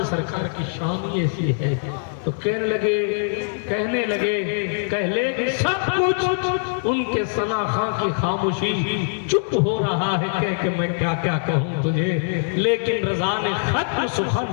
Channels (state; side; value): silent; right; digital silence